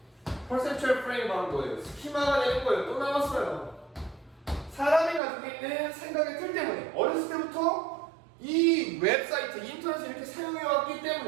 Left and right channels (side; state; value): left; drops out; at 5.2 s